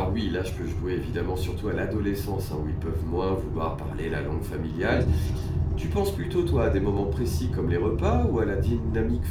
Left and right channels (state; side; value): identical; both; correlation 1.00